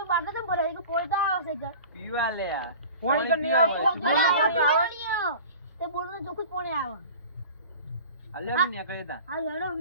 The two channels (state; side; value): inverted; both; correlation -0.40